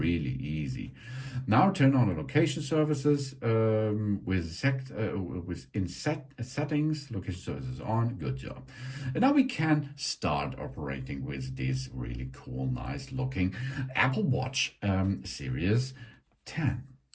easy. Now turn on the location services in settings. Location services on. Good job. And now we can start operating with this really cool, nice looking Apple Watch Series 10.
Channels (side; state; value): both; identical; correlation 1.00